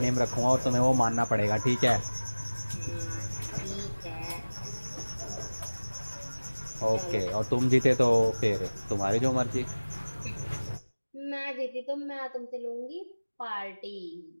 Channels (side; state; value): both; inverted; correlation -1.00